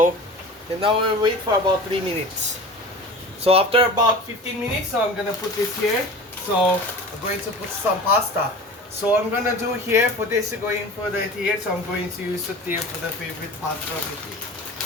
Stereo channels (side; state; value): both; normal; correlation 0.36